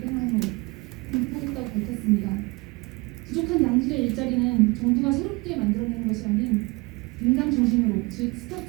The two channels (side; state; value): left; quieter; 25.7 dB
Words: 공급하겠다고 밝혔습니다. 부족한 양질의 일자리는 정부가 새롭게 만들어내는 것이 아닌 민간 중심으로, 즉